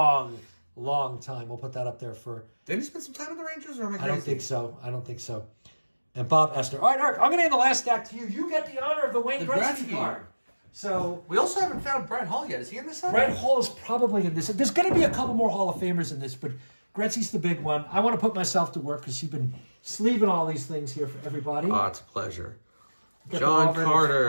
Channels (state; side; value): inverted; both; correlation -1.00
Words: time. We'll put that up there for... Didn't he spend some time with the Rangers? Or am I crazy? I don't think so. And Bob Esther. All right, Eric, I'm going to hand the last stack to you. You get the honor of the Wayne Gretzky card. So we also haven't found Brett Hall yet. Is he in this set? Brett Hall is probably in this. There's going to be a couple more Hall of Famers in this, but Gretzky's the big one. I want to put myself to work because you've been sleeving all these things here for everybody. Oh, it's a pleasure. John